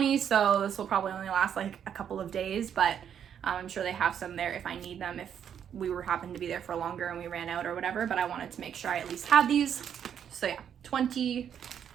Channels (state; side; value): quieter; left; 8.7 dB